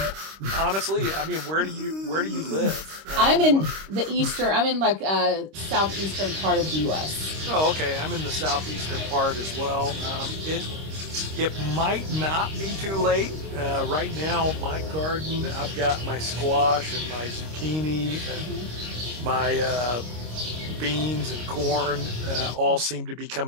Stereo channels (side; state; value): left; late; 26 ms